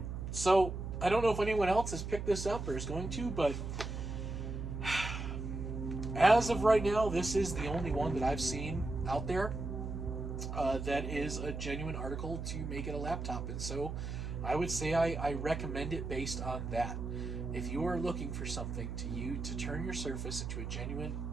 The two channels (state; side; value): noise; right; hum, 5 dB below the sound